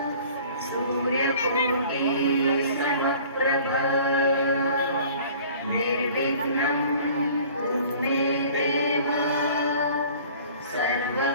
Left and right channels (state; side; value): inverted; both; correlation -0.49